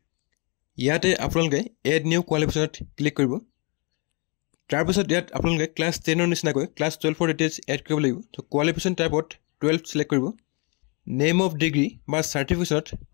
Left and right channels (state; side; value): quieter; right; 32.4 dB